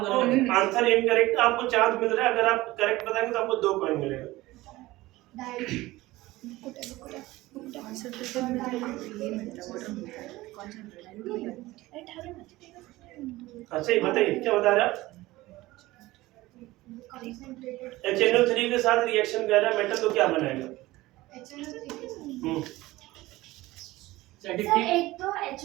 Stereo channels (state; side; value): quieter; left; 18.5 dB